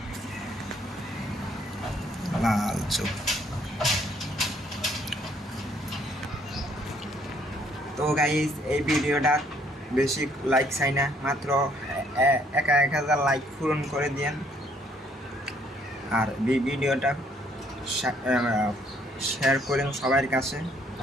লাল চোখ। তো গাইস, এই ভিডিওটা বেশি লাইক চাই না, মাত্র 1000 লাইক পূরণ করে দিন। আর ভিডিওটা শেয়ার করেন সবার কাছে।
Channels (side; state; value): both; normal; correlation 0.65